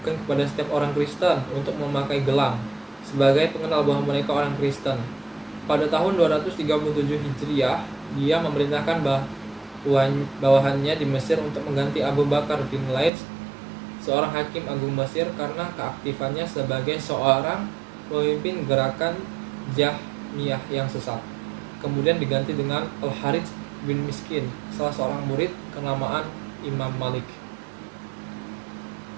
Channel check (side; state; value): left; drops out; at 13.1 s